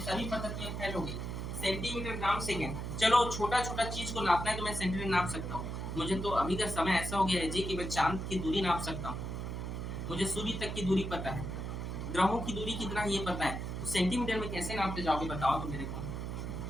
सभी पद्धतियां फैल हो गई। सेंटीमीटर, ग्राम, सेकंड, चलो छोटा छोटा चीज को नापना है तो मैं सेंटीमीटर नाप सकता हूँ। मुझे तो अभी का समय ऐसा हो गया है जी कि मैं चांद की दूरी नाप सकता हूँ, मुझे सूर्य तक की दूरी पता है, ग्रहों की दूरी कितना है ये पता है, तो सेंटीमीटर में कैसे नापते जाओगे बताओ तो मेरे को।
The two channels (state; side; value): noise; right; hum, 4 dB below the sound